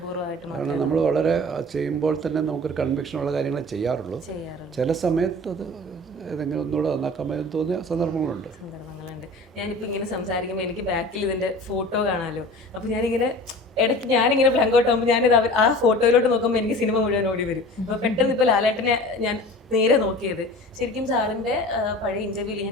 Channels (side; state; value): both; normal; correlation 0.40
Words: കാരണം നമ്മൾ വളരെ ചെയ്യുമ്പോൾ തന്നെ നമുക്കൊരു കൺവിക്ഷനുള്ള കാര്യങ്ങളെ ചെയ്യാറുള്ളൂ. ചില സമയത്ത് അത് ഏതെങ്കിലും ഒന്നുകൂടെ നന്നാക്കാമെന്ന് തോന്നിയ സന്ദർഭങ്ങളുണ്ട്. ഞാനിപ്പോൾ ഇങ്ങനെ സംസാരിക്കുമ്പോൾ എനിക്ക് ബാക്കിൽ ഇതിൻ്റെ ഫോട്ടോ കാണാമല്ലോ. അപ്പോൾ ഞാനിങ്ങനെ ഇടയ്ക്ക് ഞാനിങ്ങനെ ബ്ലാങ്ക് ഔട്ട് ആകുമ്പോൾ ഞാനിത് ആ ഫോട്ടോയിലോട്ട് നോക്കുമ്പോൾ എനിക്ക് സിനിമ മുഴുവൻ ഓടി വരും. അപ്പോൾ പെട്ടെന്ന് ഇപ്പോൾ ലാലേട്ടനെ ഞാൻ നേരെ നോക്കിയത് ശരിക്കും സാറിൻ്റെ പഴയ ഇൻ്റർവ്യൂവിൽ